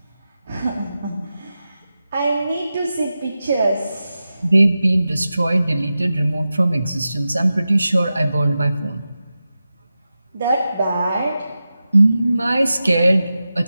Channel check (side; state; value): both; inverted; correlation -0.93